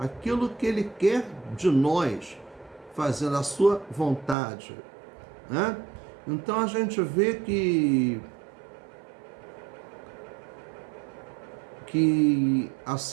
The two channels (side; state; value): left; drops out; at 4.4 s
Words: que Ele quer de nós, fazendo a sua vontade. Né? Então a gente vê que